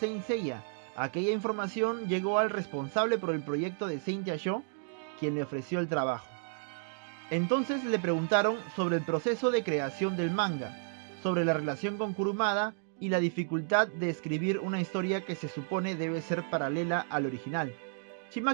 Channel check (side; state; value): left; silent; digital silence